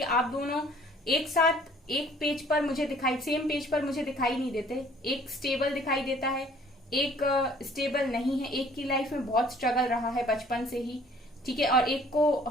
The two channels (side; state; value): both; normal; correlation 0.56